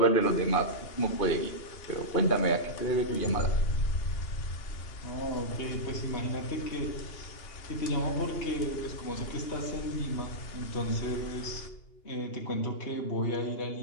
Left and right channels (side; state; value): right; late; 2.8 ms